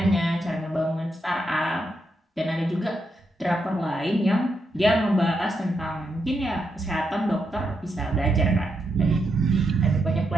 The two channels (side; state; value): both; normal; correlation 0.82